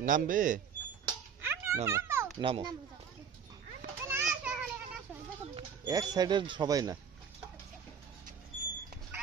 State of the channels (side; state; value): left; quieter; 7.2 dB